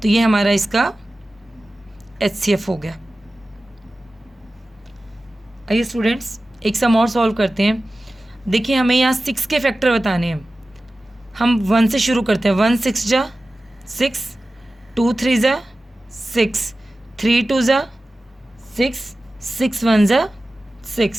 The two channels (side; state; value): both; normal; correlation 0.95